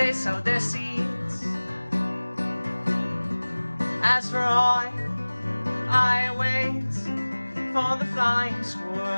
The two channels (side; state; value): both; inverted; correlation -1.00